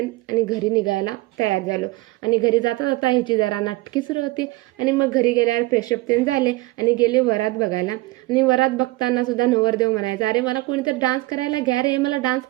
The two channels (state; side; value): quieter; left; 20.7 dB